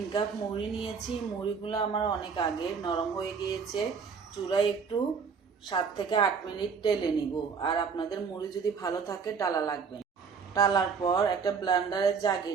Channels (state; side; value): quieter; left; 5.8 dB